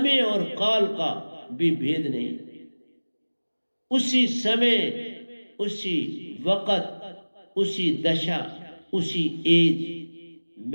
और काल का भी भेद नहीं। उसी समय, उसी वक्त, उसी दशा, उसी एज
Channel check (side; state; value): both; inverted; correlation -1.00